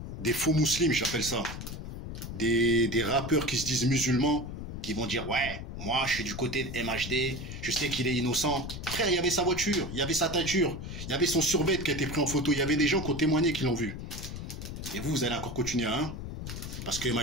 Des faux musulmans, j'appelle ça. Des rappeurs qui se disent musulmans. Qui vont dire, ouais, moi, je suis du côté de MHD, je sais qu'il est innocent. Frère, il y avait sa voiture, il y avait sa teinture, il y avait son survêt qui a été pris en photo, il y avait des gens qui ont témoigné qui l'ont vu. Et vous, vous allez encore continuer, hein? Parce que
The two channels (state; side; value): noise; left; rumble, 8 dB below the sound